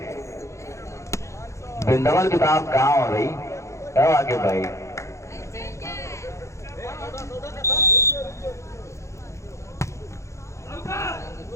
बिंदवल की तरफ कहाँ हो भाई? आकिब भाई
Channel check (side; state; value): right; late; 0.14 ms